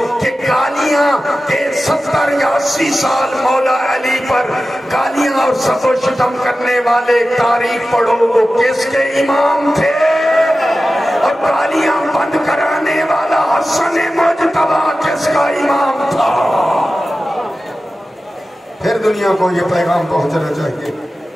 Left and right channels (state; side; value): normal; both; correlation 0.94